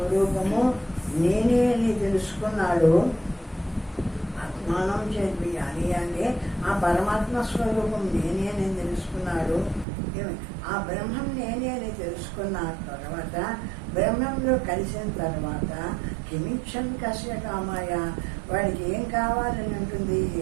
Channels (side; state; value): left; drops out; at 9.9 s